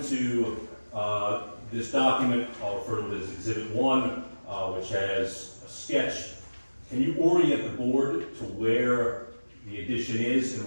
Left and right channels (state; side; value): inverted; both; correlation -1.00